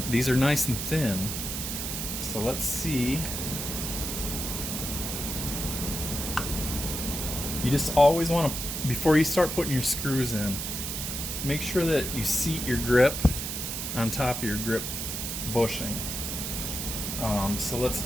these are nice and thin. So let's see. You just always want to, before you start putting your screws in, make sure that you seat your grip on top of your grip bushing. So let's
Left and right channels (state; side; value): noise; right; hiss, 4 dB below the sound